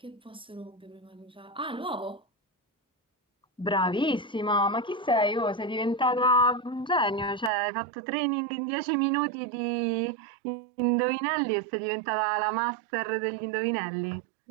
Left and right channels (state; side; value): drops out; left; at 7.5 s